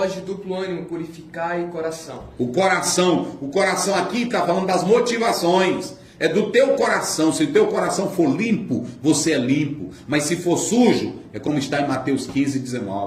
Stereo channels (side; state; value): both; identical; correlation 1.00